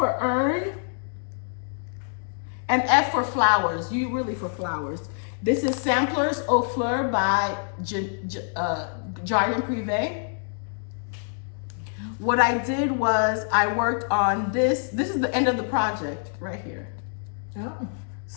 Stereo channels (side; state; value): right; silent; digital silence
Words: earn and F for flowers. U really for flowers. This is Samplers au Fleurs by Jardin Prive. What I did was I worked on this. This is the end of the project right here. Oh.